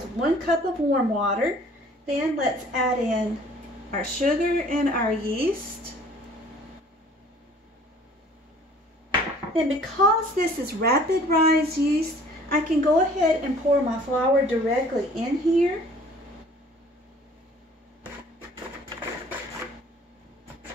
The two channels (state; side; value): normal; both; correlation 0.52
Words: 1 cup of warm water. Then let's add in our sugar and our yeast. Then because this is rapid rise yeast, I can go ahead and pour my flour directly in here.